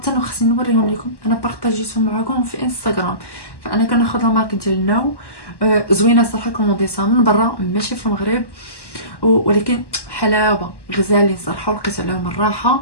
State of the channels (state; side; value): late; right; 1.1 ms